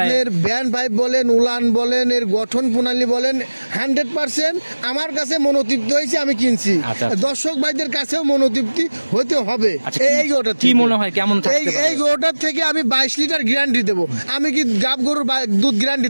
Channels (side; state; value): both; inverted; correlation -1.00